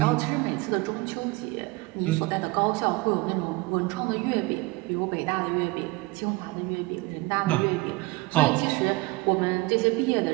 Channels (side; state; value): left; quieter; 22.5 dB